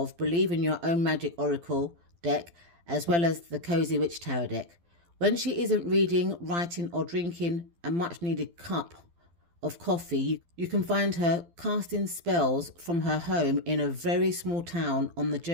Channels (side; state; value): left; late; 12 ms